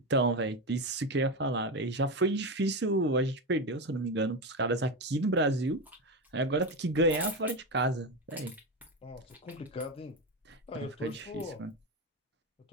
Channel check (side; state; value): both; normal; correlation 0.15